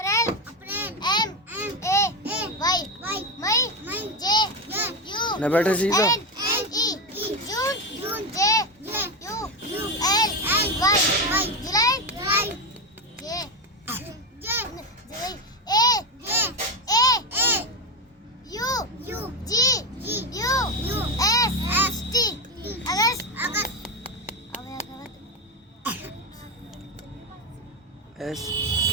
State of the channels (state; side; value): normal; both; correlation 0.13